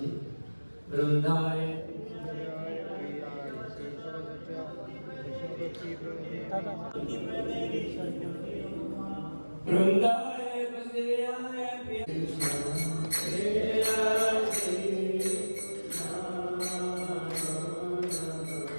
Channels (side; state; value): both; inverted; correlation -1.00